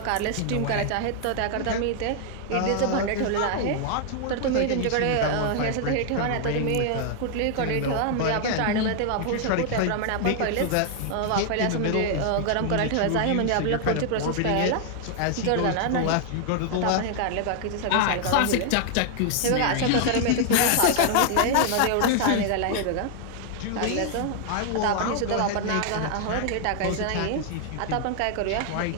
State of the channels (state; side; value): different; both; correlation 0.00